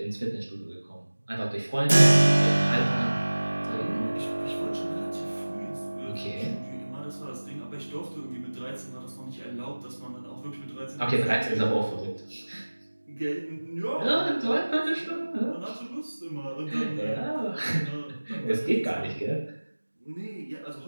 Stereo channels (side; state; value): both; inverted; correlation -1.00